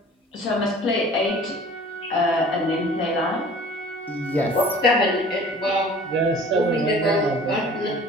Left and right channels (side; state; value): both; normal; correlation 0.47